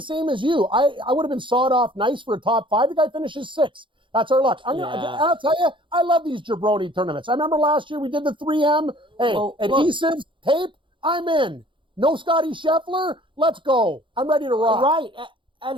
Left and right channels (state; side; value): late; left; 0.24 ms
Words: same as you. I would have been sawed off nice for a top 5. The guy finishes 6th. That's our luck. I'll tell you, I love these jabroni tournaments. I remember last year we did the 3M. Hey, adhesives, tape, I'm in. No Scotty Scheffler, let's go. I'm ready to rock. Right. And